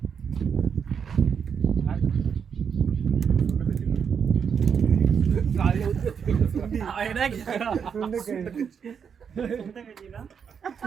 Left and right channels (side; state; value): left; quieter; 7.0 dB